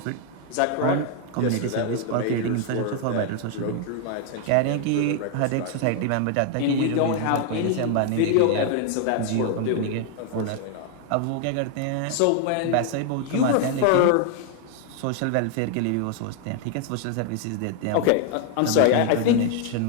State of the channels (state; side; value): different; both; correlation 0.00